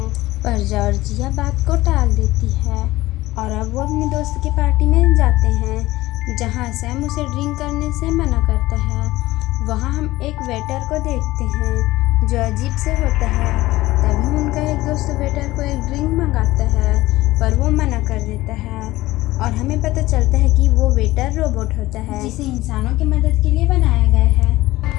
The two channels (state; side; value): quieter; right; 17.7 dB